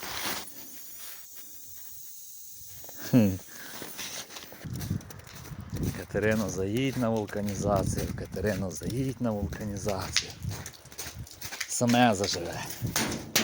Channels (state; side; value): identical; both; correlation 1.00